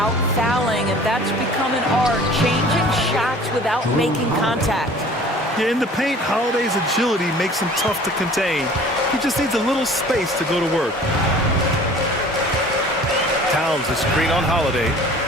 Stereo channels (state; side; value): normal; both; correlation 0.47